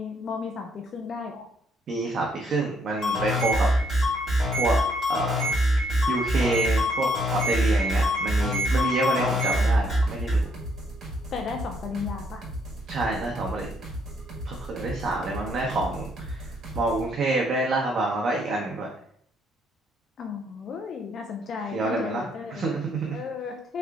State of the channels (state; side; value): normal; both; correlation 0.70